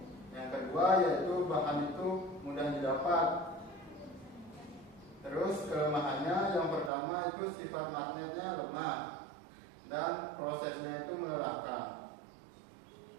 Yang kedua yaitu bahan itu mudah didapat. Terus kelemahannya yang pertama itu sifat magnetnya lemah dan prosesnya itu melelahkan.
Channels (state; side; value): drops out; left; at 6.9 s